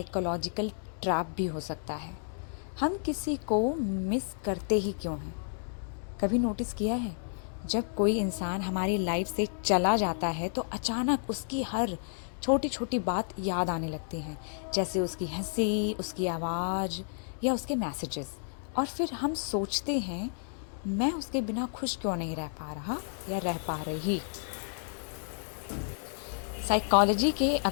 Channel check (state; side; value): silent; right; digital silence